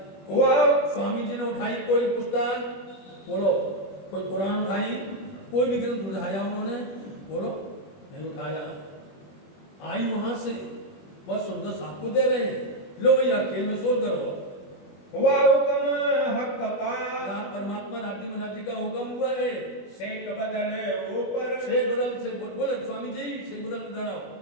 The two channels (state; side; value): late; right; 21 ms